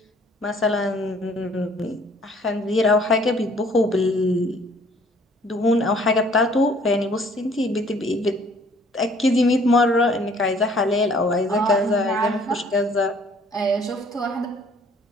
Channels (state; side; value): normal; both; correlation 0.58